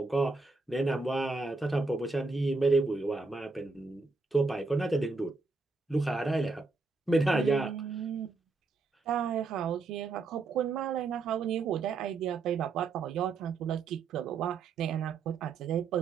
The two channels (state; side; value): quieter; left; 4.0 dB